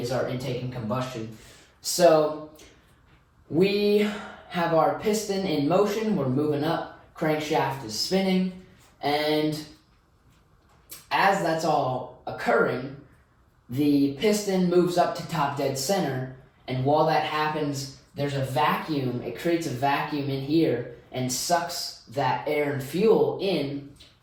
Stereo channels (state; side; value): identical; both; correlation 1.00